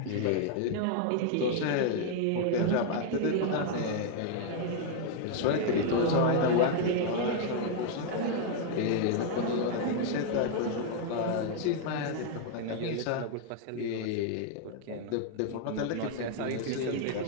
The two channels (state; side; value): different; both; correlation 0.00